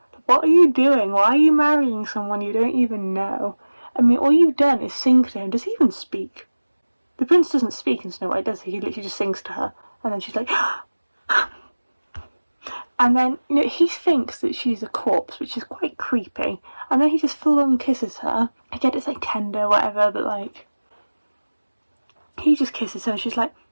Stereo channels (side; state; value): both; inverted; correlation -1.00